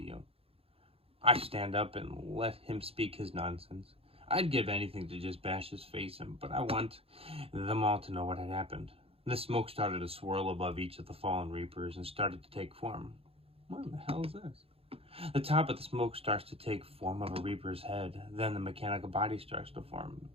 you. I stand up and let him speak his nonsense. I'd give anything to just bash his face in, but I want them all to know what had happened. The smoke started to swirl above each of the fallen Reapers and started to take form. What the hell is this? The top of the smoke starts to take form of a Reaper's head. Then the mechanical body starts to form.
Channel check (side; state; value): left; late; 0.28 ms